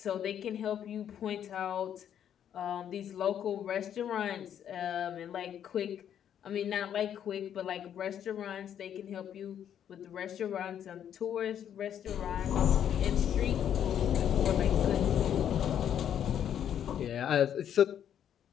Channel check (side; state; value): right; quieter; 9.5 dB